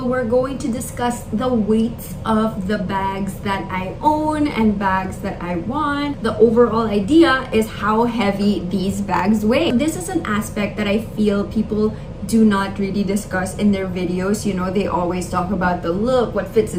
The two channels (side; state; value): both; identical; correlation 1.00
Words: we're going to discuss the weights of the bags that I own and bags that I want. The overall idea is how heavy these bags weigh. This is an aspect that I feel people do not really discuss in their videos. You know, they always talk about the look, what fits